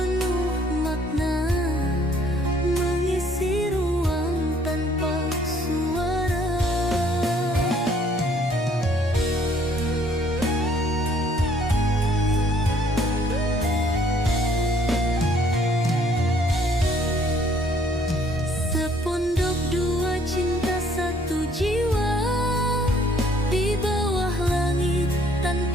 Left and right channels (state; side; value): normal; both; correlation 0.62